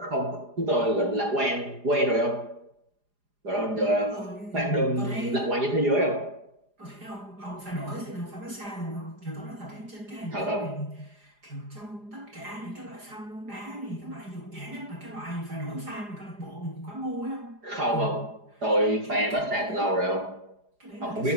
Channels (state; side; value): late; left; 4.9 ms